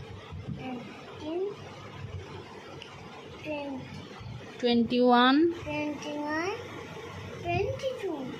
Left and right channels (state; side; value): identical; both; correlation 1.00